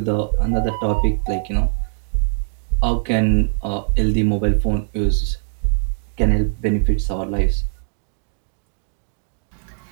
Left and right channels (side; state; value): left; silent; digital silence